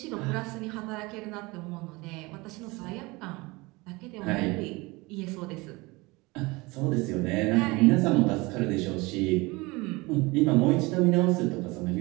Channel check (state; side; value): quieter; left; 23.8 dB